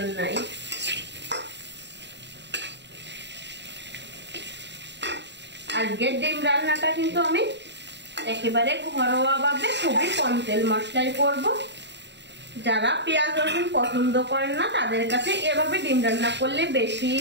নাই। আজকের ডিম রান্নাটা কিন্তু আমি একেবারে ঘরোয়া ভাবে খুবই কম তেল মশলায় করব। যারা পেঁয়াজ রসুন পছন্দ করেন না তাদের কাছে এভাবে ডিম রান্না করলে বেশি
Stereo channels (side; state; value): left; late; 0.51 ms